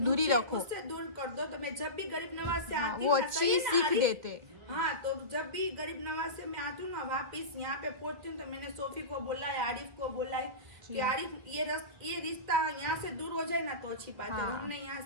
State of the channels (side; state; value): left; late; 2.0 ms